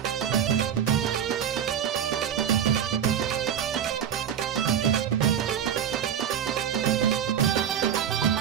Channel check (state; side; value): quieter; left; 9.0 dB